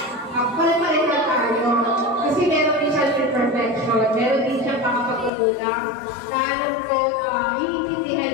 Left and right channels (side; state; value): right; drops out; at 5.3 s